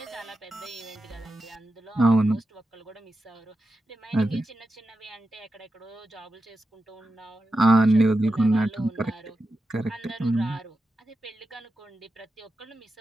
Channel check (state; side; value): normal; both; correlation 0.90